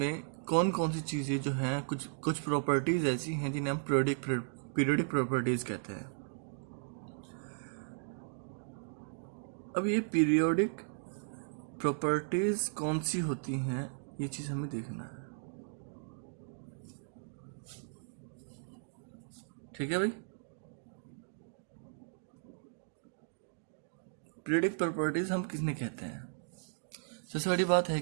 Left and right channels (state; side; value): silent; left; digital silence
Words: कौन कौन सी चीज़ें जो हैं, कुछ कुछ प्रॉपर्टीज़ ऐसी हैं जिन्हें हम पीरियोडिक प्रॉपर्टीज़ कहते हैं। अब ये पीरियोडिक प्रॉपर्टीज कौन सी होती हैं ये चीज हमें देखना है। ठीक है भाई। पीरियोडिक प्रॉपर्टीज हम किसने कहते हैं? सबसे बड़ी बात है